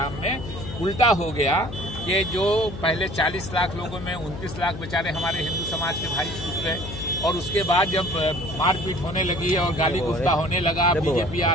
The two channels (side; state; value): left; noise; hum, 10 dB below the sound